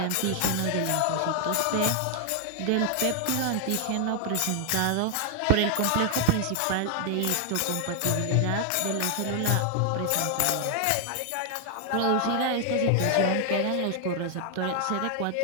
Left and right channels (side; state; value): both; different; correlation 0.00